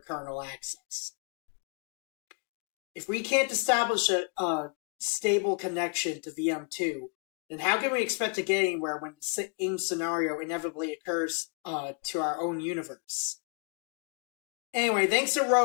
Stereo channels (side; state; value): right; quieter; 39.8 dB